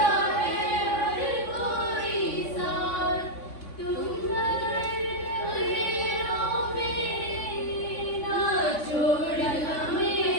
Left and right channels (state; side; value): late; right; 3.5 ms